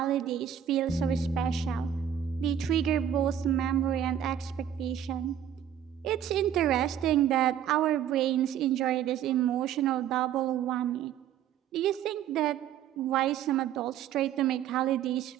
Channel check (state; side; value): quieter; left; 9.8 dB